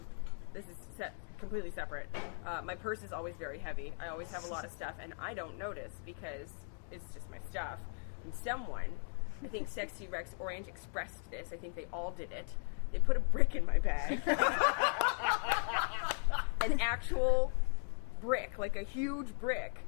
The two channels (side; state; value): right; silent; 53 dB below the other